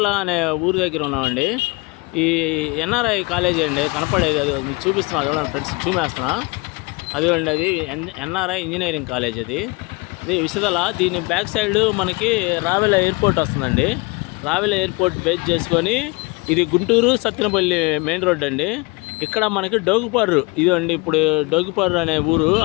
అనే ఊరి దగ్గర ఉన్నామండి. ఈ ఎన్ఆర్ఐ కాలేజీ అండి, కనపడేది అది మీకు చూపిస్తున్నా చూడండి ఫ్రెండ్స్, చూపేస్తున్నా అదిగోండి. అది ఎన్ఆర్ఐ ఇంజనీరింగ్ కాలేజ్. అది విసిదల. దీని బ్యాక్ సైడ్ మనకి రావెల ఎయిర్పోర్ట్ వస్తుందండి. రావెల ఎయిర్పోర్ట్ బేస్ చేసుకొని ఇది గుంటూరు సత్తెనపల్లి మెయిన్ రోడ్ అండి. ఇక్కడ మనకి డోగుపర్రు ఇదండి. ఇప్పుడు డోగుపర్రు అనే ఊరు,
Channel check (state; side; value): quieter; right; 26.3 dB